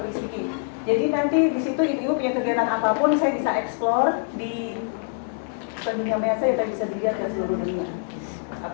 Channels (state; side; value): silent; right; digital silence